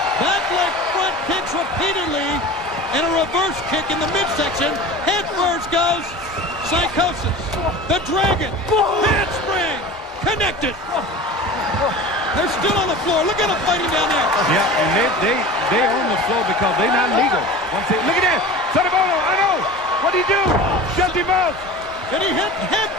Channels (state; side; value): normal; both; correlation 0.35